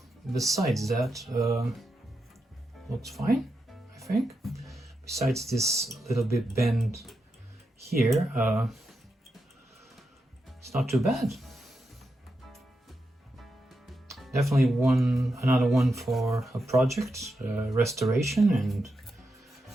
besides that, looks fine, I think. Besides this little bit bend here, it's not too bad. Definitely another one for a project, restoration,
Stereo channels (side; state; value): both; normal; correlation 0.86